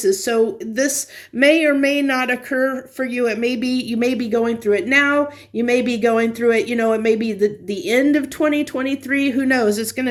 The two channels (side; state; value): both; identical; correlation 1.00